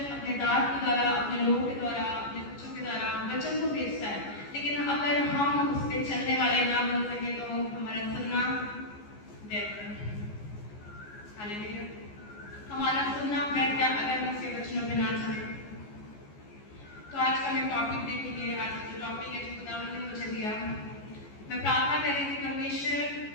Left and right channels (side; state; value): right; late; 14 ms